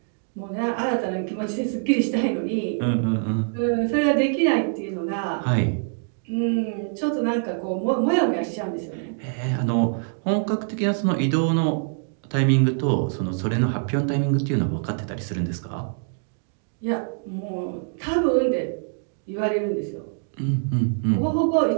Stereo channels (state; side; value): silent; left; digital silence